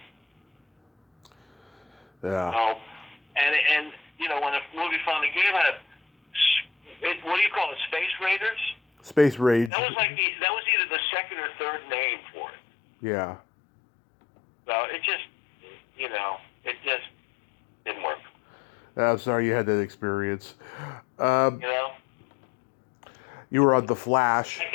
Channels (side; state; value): right; drops out; at 9.7 s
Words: Yeah. So, and you know, when a movie finally came out, what do you call it, Space Raiders? Space Rage. That was either the second or third name for it. Yeah. So it just, you know, it just didn't work. I'm sorry you had that experience. You know? You were on The Flash. I